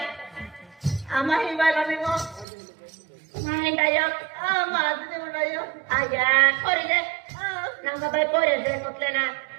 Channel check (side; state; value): left; drops out; at 2.5 s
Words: आम्हा ही बाला मी मो नाही डायो माझं ते डायो आया कोरी दे नंगा बाई पोरे दे म्हटले ना